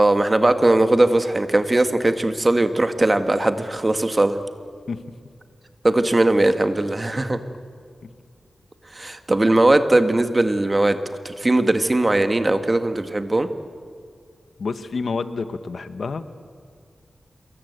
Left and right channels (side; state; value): both; normal; correlation 0.98